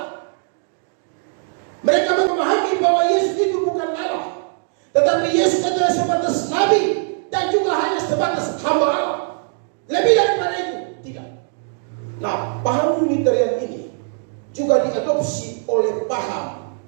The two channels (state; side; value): silent; left; digital silence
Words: Mereka memahami bahwa Yesus itu bukan Allah, tetapi Yesus adalah sebatas nabi dan juga hanya sebatas hamba Allah. Lebih daripada itu tidak. Nah, paham Unitarian ini juga diadopsi oleh paham